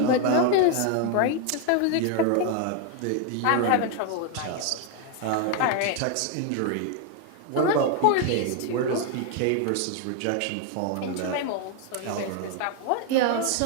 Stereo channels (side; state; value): both; different; correlation 0.01